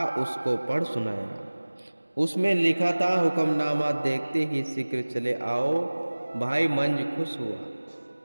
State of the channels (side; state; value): both; inverted; correlation -1.00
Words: उसको पढ़ सुनाया। उसमें लिखा था, हुक्मनामा देखते ही शीघ्र चले आओ। भाई मंज खुश